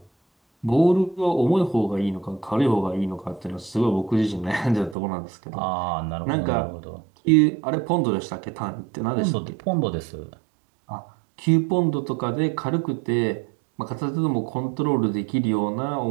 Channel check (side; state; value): left; drops out; at 5.0 s